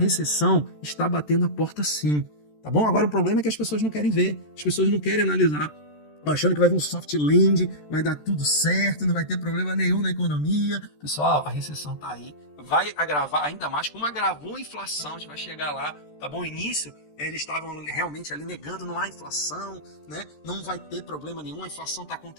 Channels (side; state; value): right; late; 13 ms